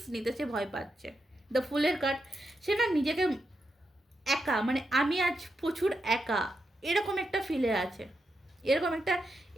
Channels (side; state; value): both; normal; correlation 0.85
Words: নিতে সে ভয় পাচ্ছে। দ্য ফুলের কার্ড, সে না নিজেকে একা, মানে আমি আজ প্রচুর একা, এরকম একটা ফিলে আছে, এরকম একটা